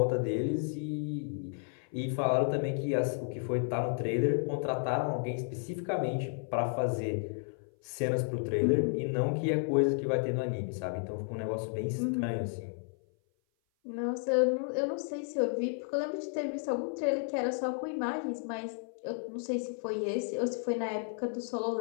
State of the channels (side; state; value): right; silent; 55 dB below the other